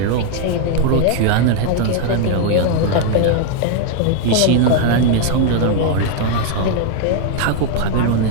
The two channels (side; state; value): both; different; correlation 0.00